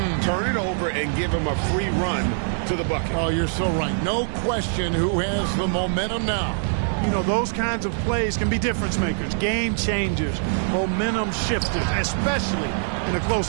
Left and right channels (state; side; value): silent; left; 59 dB below the other